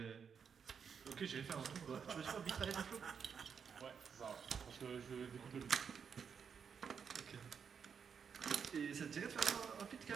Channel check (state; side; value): quieter; left; 6.7 dB